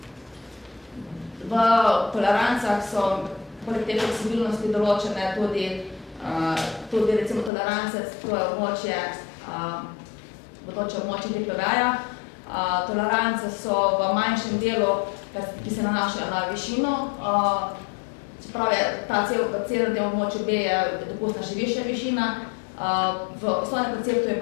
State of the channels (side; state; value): right; drops out; at 7.5 s